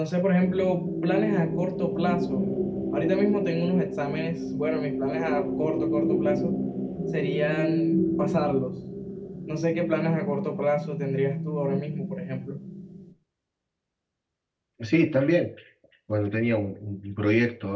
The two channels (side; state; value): both; identical; correlation 1.00